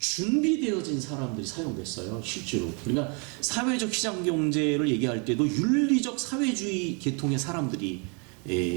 사람들이 사용됐어요, 실제로. 그러니까 사회적 시장 경제를 얘기할 때도 윤리적 사회주의 계통의 사람들이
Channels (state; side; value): quieter; left; 34.7 dB